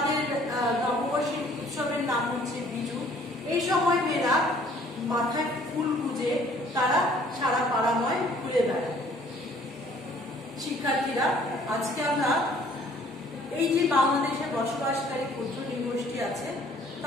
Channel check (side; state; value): both; normal; correlation 0.57